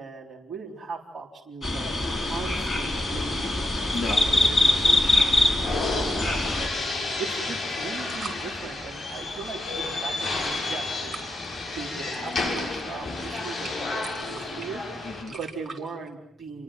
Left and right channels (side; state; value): both; normal; correlation 0.83